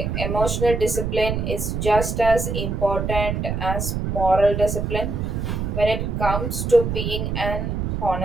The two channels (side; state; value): right; noise; rumble, 2 dB below the sound